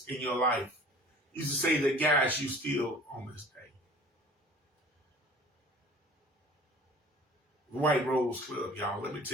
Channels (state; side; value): normal; both; correlation 0.46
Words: in your life used to say that guides you still on this day? White Rose Club, y'all. Let me